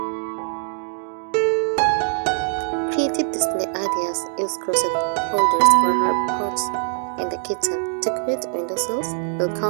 Creative display ideas. Use crochet holders for herb pots in the kitchen. Decorate windowsills,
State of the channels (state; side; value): silent; left; digital silence